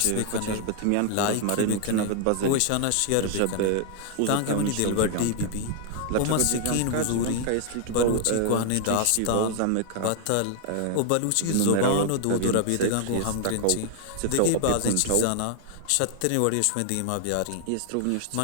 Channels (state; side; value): different; both; correlation 0.00